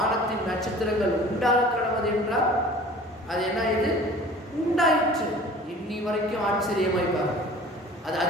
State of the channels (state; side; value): normal; both; correlation 0.45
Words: நட்சத்திரங்கள் உண்டாக கடவுது என்றால் அது என்ன, இது உண்டாயிற்று. இன்னி வரைக்கும் ஆச்சரியமாய் பாருங்க, அது